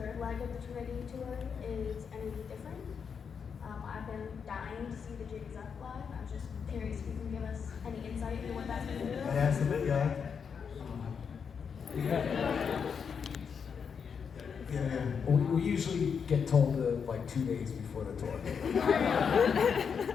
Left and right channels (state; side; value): quieter; right; 6.5 dB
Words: leg of the Trinity tour is any different. I've been dying to see the Jiggs Up live. I'm just curious if you can give us any insight into what that's going to do. That's the big guy. Yeah. We usually get told like 2 days before the tour.